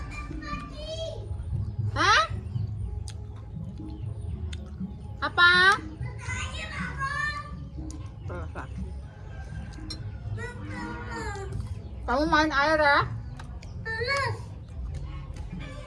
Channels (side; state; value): both; identical; correlation 1.00